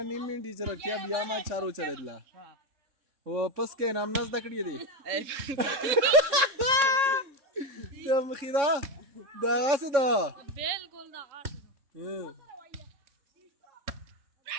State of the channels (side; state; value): left; late; 3.6 ms